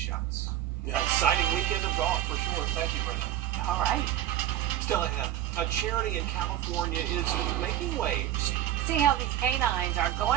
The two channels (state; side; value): quieter; left; 12.3 dB